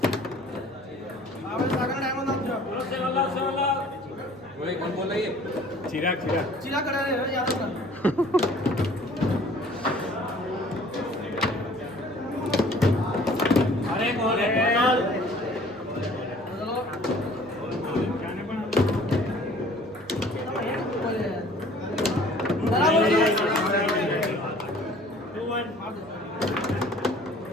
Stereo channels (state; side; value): normal; both; correlation 0.52